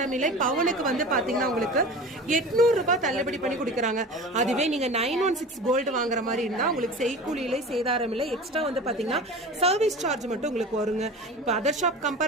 இல்லை. பவுனுக்கு வந்து பாத்தீங்கன்னா உங்களுக்கு 800 ரூபாய் தள்ளுபடி பண்ணி கொடுக்குறாங்க. அதுவே நீங்க 916 கோல்டு வாங்குற மாதிரி இருந்தா உங்களுக்கு செய்கூலி இல்லை, சேதாரம் இல்லை. எக்ஸ்ட்ரா வந்து பாத்தீங்கன்னா சர்வீஸ் சார்ஜ் மட்டும் உங்களுக்கு வருங்க. இப்போ அதர் ஷாப்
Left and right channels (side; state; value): both; normal; correlation 0.35